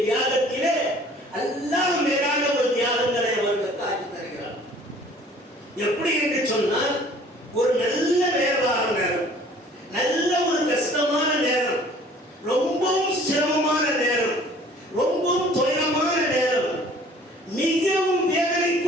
தியாகத்திலே அல்லாஹ் மேலான ஒரு தியாகங்களை அவர்களுக்கு ஆக்கி தருகிறார். எப்படி என்று சொன்னால், ஒரு நல்ல வியாபார நேரம், நல்ல ஒரு கஷ்டமான நேரம், ரொம்பவும் சிரமமான நேரம், ரொம்பவும் துயரமான நேரம், மிகவும்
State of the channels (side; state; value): both; normal; correlation 0.52